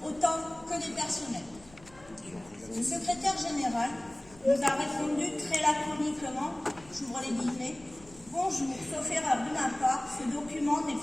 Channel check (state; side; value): noise; left; rumble, 24 dB below the sound